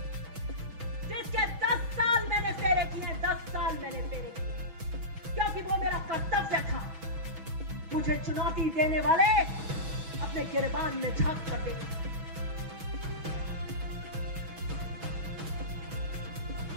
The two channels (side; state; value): left; late; 6.1 ms